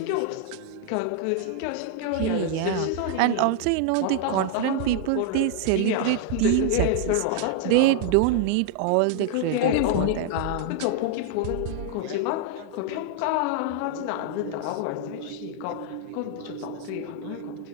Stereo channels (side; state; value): both; different; correlation 0.00